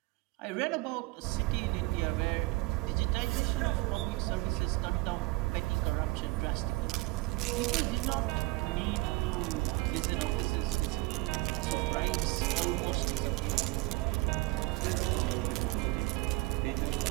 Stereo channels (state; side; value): quieter; left; 22.5 dB